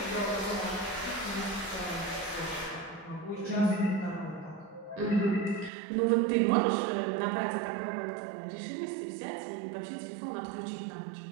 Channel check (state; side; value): drops out; left; at 5.7 s